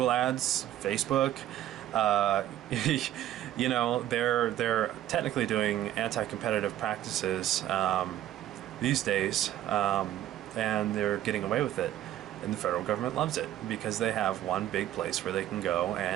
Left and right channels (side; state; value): left; quieter; 12.8 dB